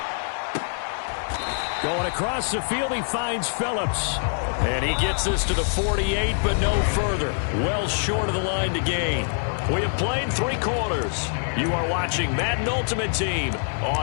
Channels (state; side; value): silent; right; digital silence